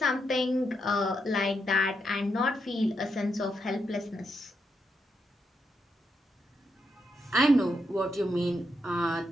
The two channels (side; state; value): both; normal; correlation 0.82